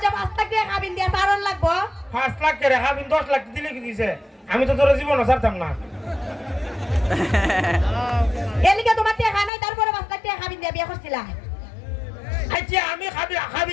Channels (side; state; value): right; drops out; at 9.5 s